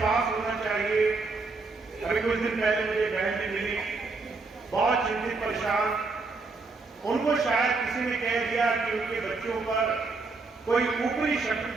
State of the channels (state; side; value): quieter; left; 3.9 dB